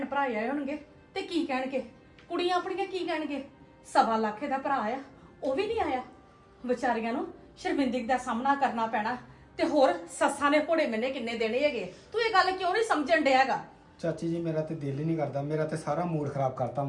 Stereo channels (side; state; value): both; identical; correlation 1.00